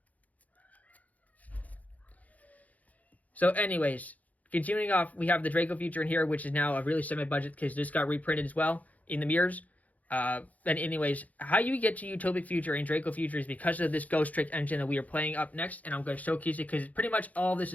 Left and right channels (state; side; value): late; right; 0.075 ms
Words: So anyways, continuing off, we have the Draco Future in here, which is now a really semi-budget because this got reprinted as well in the mirrors. And anyways, how you get to Utopic Future and Draco Future is because of this Ghost Trick engine that we are playing up next, and I'm going to showcase it because pretty much all this